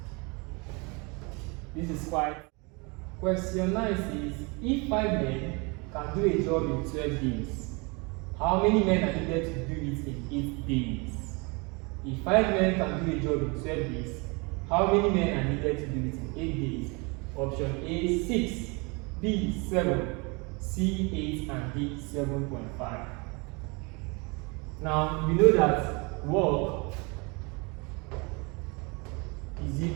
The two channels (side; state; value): left; quieter; 29.5 dB